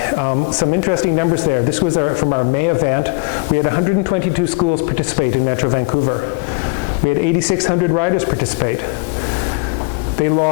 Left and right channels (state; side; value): quieter; right; 30.8 dB